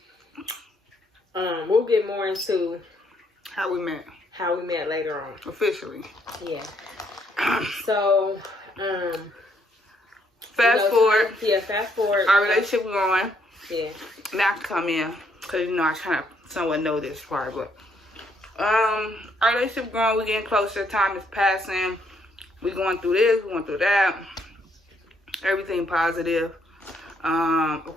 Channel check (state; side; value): normal; both; correlation 0.71